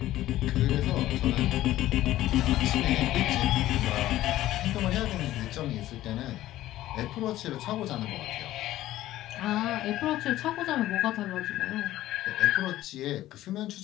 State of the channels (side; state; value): right; quieter; 14.7 dB